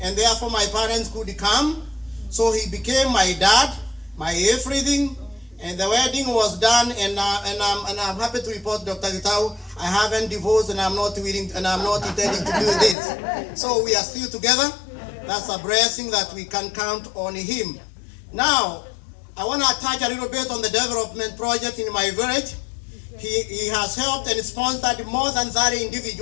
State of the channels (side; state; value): right; drops out; at 13.0 s